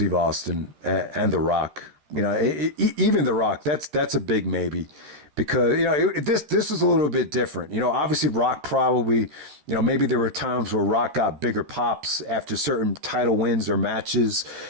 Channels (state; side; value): late; left; 13 ms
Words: Austin and The Rock. Even The Rock, that's a big maybe. Because, this is a little bit different. Obviously Rock probably, maybe there were times where Rock got bigger pops after certain title wins or matches.